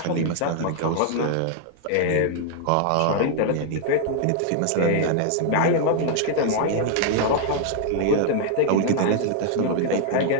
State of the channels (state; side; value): different; both; correlation 0.00